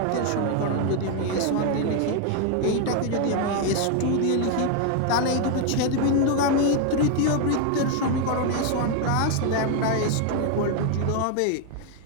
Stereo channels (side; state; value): both; different; correlation 0.01